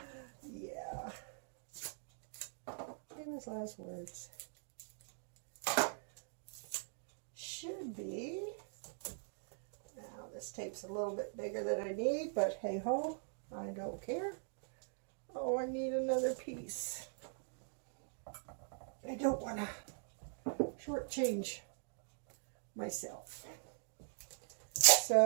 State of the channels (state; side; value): silent; left; digital silence